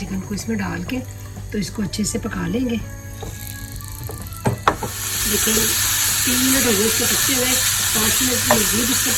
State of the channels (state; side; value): identical; both; correlation 1.00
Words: को इसमें डाल के तो इसको अच्छे से पका लेंगे। लेकिन 3 मिनट हो गए इसको पकते हुए, 5 मिनट मजबूत इसको